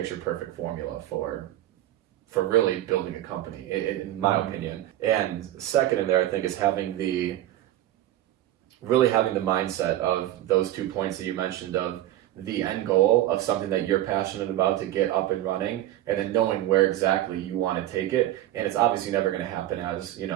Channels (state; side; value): quieter; left; 13.7 dB